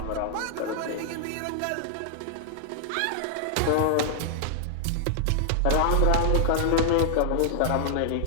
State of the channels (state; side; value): different; both; correlation -0.01